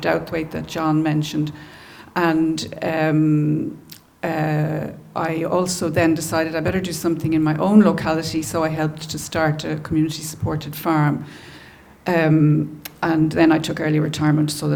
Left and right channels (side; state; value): both; identical; correlation 1.00